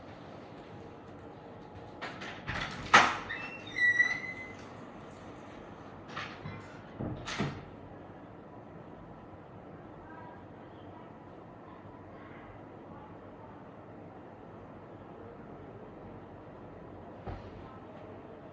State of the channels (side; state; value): both; identical; correlation 1.00